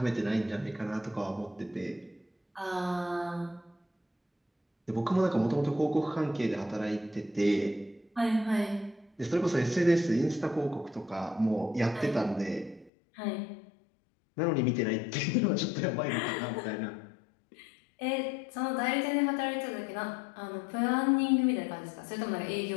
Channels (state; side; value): drops out; right; at 12.9 s